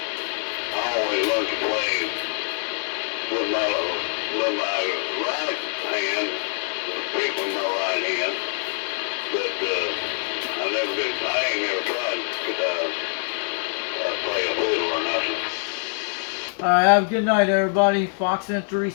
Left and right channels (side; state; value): right; silent; digital silence